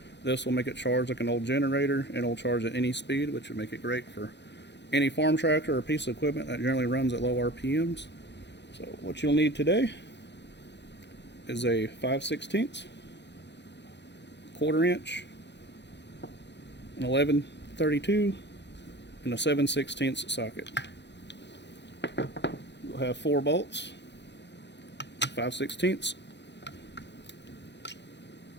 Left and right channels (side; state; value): right; late; 0.51 ms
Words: This will make it charge like an old generator, and it'll charge at any speed, which would make it great for any farm tractor or piece of equipment that generally runs at low RPMs. So what you'll need today is a 5/16, quarter inch, an 11/32, and a 7/16 socket. You'll have 4 bolts, 5/16.